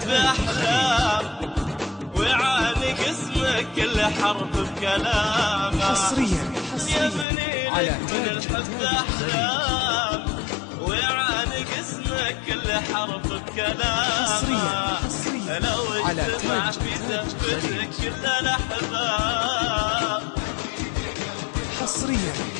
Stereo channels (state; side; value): drops out; right; at 7.2 s